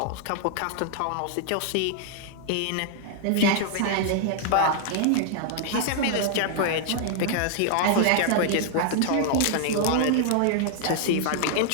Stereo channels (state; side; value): different; both; correlation -0.01